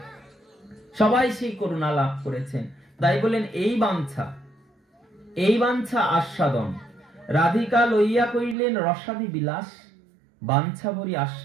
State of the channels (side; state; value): left; drops out; at 8.6 s